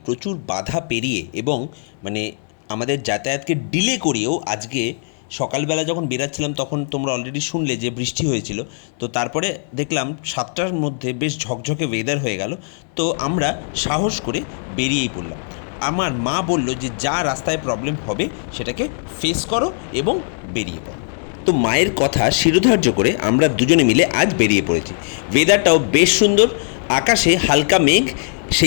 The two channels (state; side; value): silent; right; 66 dB below the other